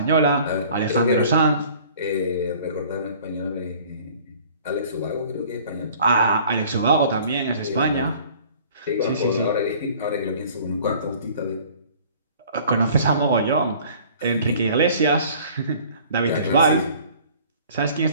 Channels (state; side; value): inverted; both; correlation -0.51